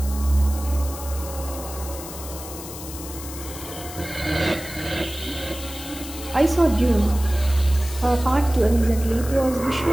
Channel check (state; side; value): noise; left; hiss, 12 dB below the sound